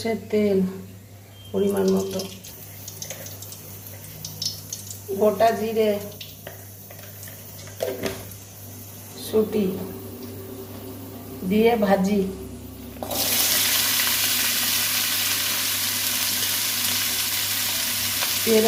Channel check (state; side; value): identical; both; correlation 1.00